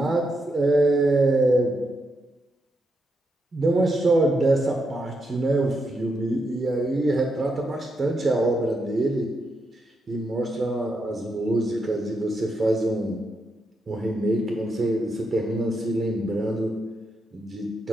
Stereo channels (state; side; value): normal; both; correlation 0.82